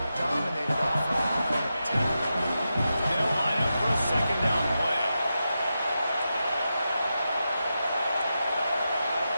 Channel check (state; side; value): inverted; both; correlation -0.89